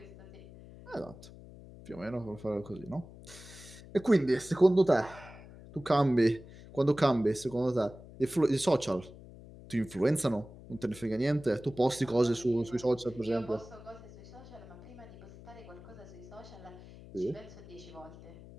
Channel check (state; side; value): noise; left; hum, 18 dB below the sound